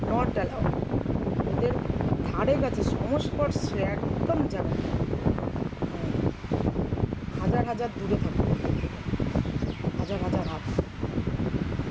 নট অ্যালাউড। এদের ধারে কাছে সংস্পর্শে একদম যাবেন না। হাজার হাজার দূরে থাকবেন, হাজার হাজার হাত।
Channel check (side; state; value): both; identical; correlation 1.00